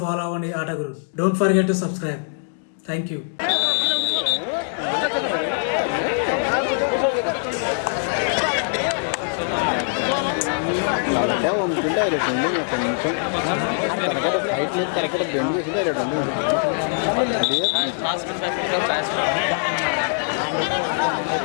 ఫాలో అవ్వండి Aataguru. Don't forget to subscribe. Thank you. తలకే వంపుకుంటే హైలైట్ ఉంది. కొంచెం తలకడ హైట్ లేదు, తలకడ బెండ్ చేసి హైలైట్ ఉంది.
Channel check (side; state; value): right; silent; 63 dB below the other